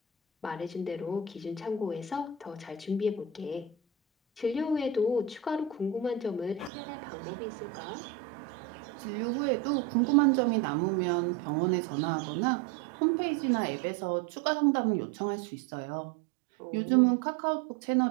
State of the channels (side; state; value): left; drops out; at 6.7 s